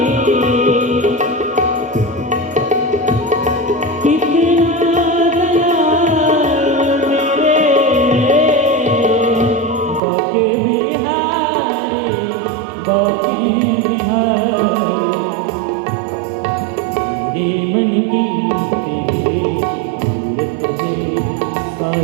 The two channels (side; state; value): left; drops out; at 10.0 s